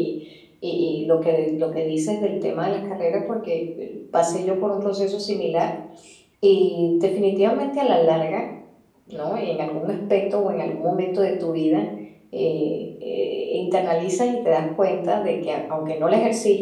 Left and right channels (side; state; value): both; identical; correlation 1.00